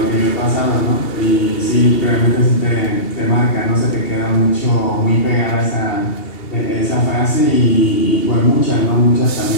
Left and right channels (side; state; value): right; late; 2.8 ms